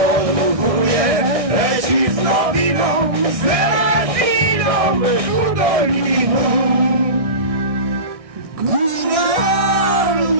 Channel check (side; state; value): left; late; 1.6 ms